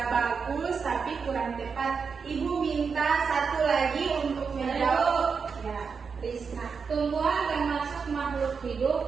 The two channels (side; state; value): left; quieter; 5.7 dB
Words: bagus tapi kurang tepat. Ibu minta satu lagi untuk menjawab. Ya, Risna. Tumbuhan termasuk makhluk